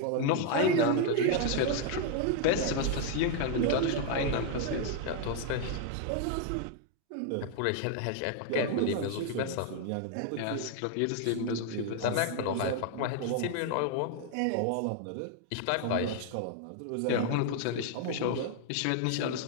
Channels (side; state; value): both; different; correlation 0.00